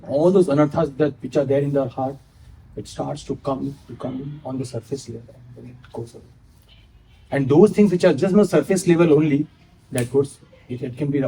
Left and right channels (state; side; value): identical; both; correlation 1.00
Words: all those anarthas that which are there in their heart, it starts to come on the surface level, and then it goes away. And those things which are just on the surface level only, it can be